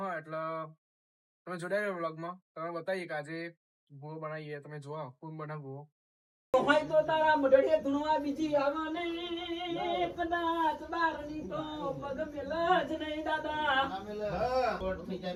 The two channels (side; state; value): both; identical; correlation 1.00